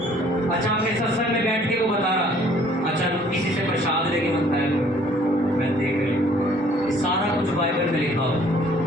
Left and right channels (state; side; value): normal; both; correlation 0.58